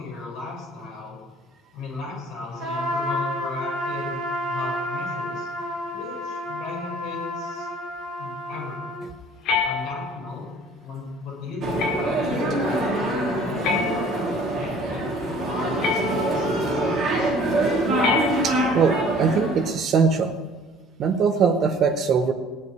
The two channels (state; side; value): normal; both; correlation 0.52